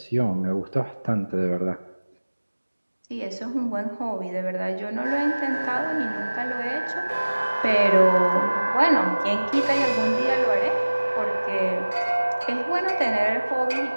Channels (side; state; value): both; inverted; correlation -1.00